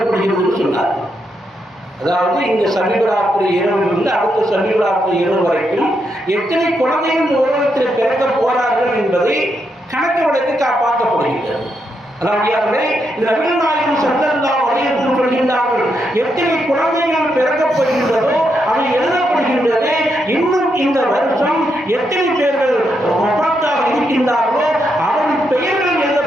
சொன்னார்கள். அதாவது இந்த சபீபராத்திரி இரவிலிருந்து அடுத்த சபீபராத்திரி இரவு வரைக்கும் எத்தனை குழந்தைகள் உலகத்தில் பிறக்க போறார்கள் என்பதை கணக்கு வழக்கு காப்பாற்றப்படுகின்றது. அதாவது இந்த நபிகள் நாயகம் ஸல்லல்லாஹு அலைஹி வஸல்லம் சொல்கின்றார்கள், எத்தனை குழந்தைகள் பிறக்கப் போகின்றதோ அவை எழுதப்படுகின்றது. இன்னும் இந்த வருஷம் எத்தனை பேர்கள் வஃபாத்தாக இருக்கின்றார்களோ அவர்கள் பெயர்கள்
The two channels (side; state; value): both; normal; correlation 0.81